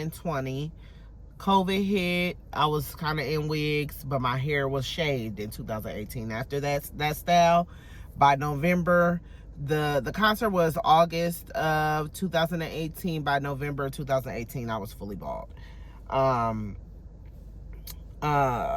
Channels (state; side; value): identical; both; correlation 1.00